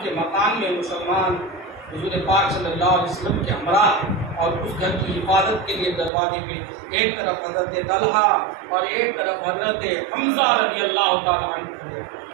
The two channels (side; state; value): left; drops out; at 6.1 s